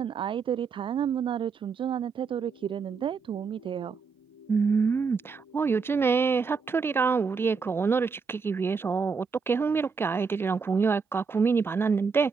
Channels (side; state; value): left; quieter; 5.2 dB